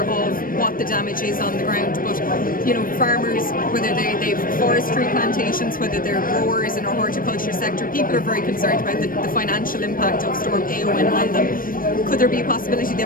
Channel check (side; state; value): right; late; 0.41 ms